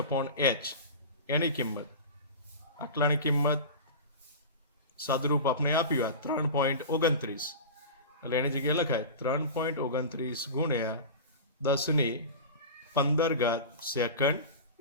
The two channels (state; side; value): inverted; both; correlation -0.30